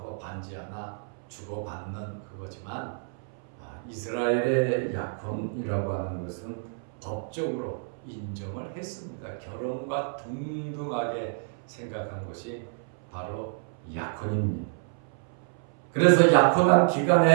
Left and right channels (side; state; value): left; silent; 58 dB below the other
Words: 반지 하나 주고받는 그거지만, 이스라엘의 약혼이라고 하는 것은 법적으로 인정을 했습니다. 결혼과 동등하게 생각한 것이 바로 약혼입니다. 그래서 약혼한